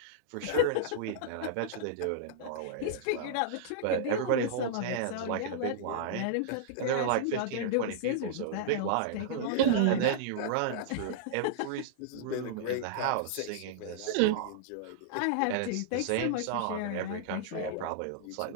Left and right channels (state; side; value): different; both; correlation -0.02